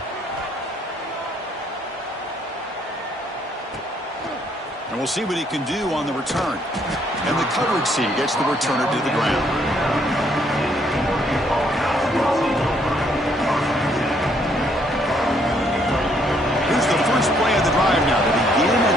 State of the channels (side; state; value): both; normal; correlation 0.68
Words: And we'll see what he can do on the return. And the coverage team gets the returner to the ground. Here's the first play of the drive now. They begin